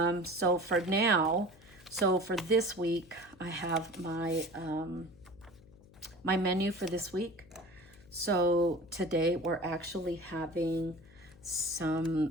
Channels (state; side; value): noise; left; hum, 24 dB below the sound